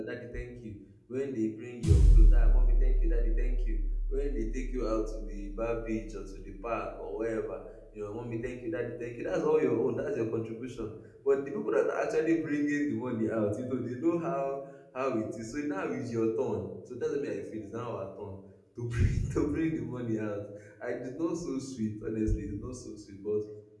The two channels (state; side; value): identical; both; correlation 1.00